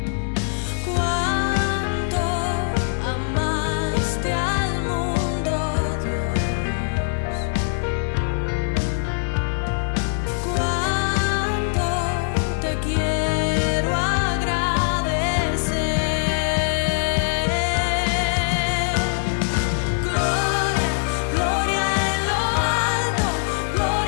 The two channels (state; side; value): silent; right; 64 dB below the other